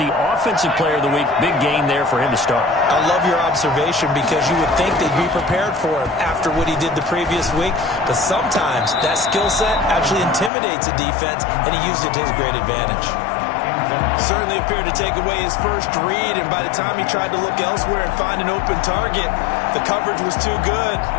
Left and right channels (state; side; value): drops out; right; at 10.5 s